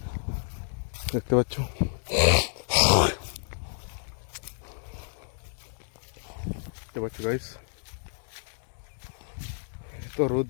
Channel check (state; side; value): silent; right; digital silence